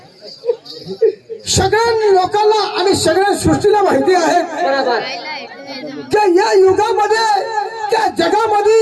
सगळ्या लोकांना आणि सगळ्या सृष्टीला माहिती आहे बरोबर की या युगामध्ये त्या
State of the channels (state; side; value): identical; both; correlation 1.00